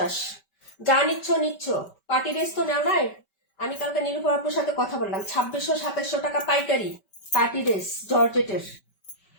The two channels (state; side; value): late; right; 5.2 ms